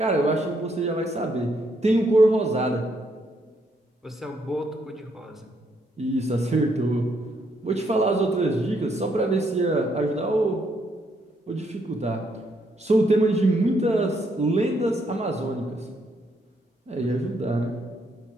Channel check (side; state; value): both; normal; correlation 0.74